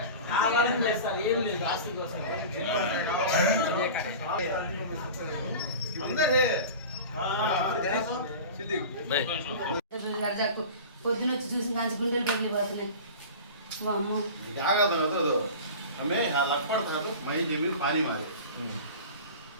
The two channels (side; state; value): both; inverted; correlation -0.34